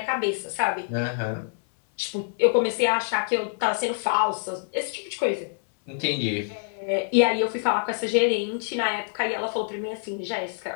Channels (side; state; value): right; silent; 61 dB below the other